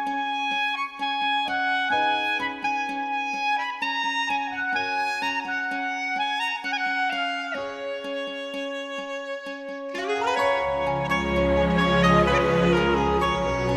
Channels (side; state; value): both; identical; correlation 1.00